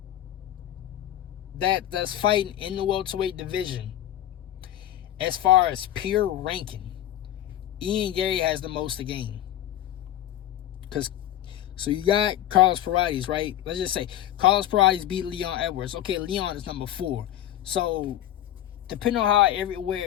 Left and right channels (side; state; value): right; quieter; 12.5 dB